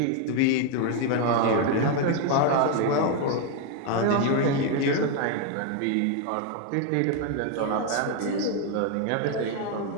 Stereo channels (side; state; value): both; different; correlation 0.01